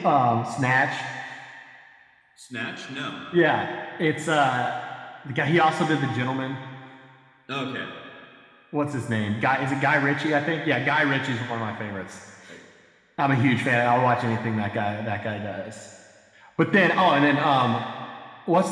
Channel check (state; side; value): identical; both; correlation 1.00